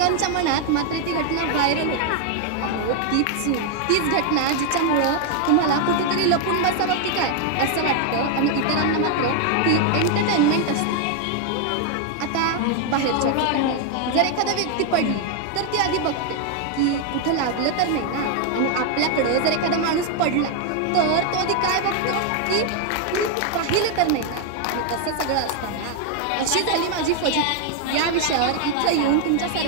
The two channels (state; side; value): different; both; correlation 0.00